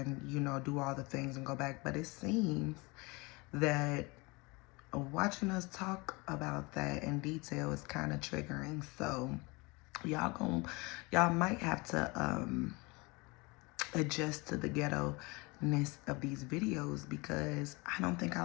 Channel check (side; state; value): right; quieter; 26.1 dB